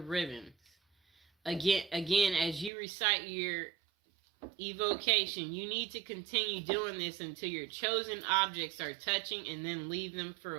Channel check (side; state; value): left; drops out; at 2.7 s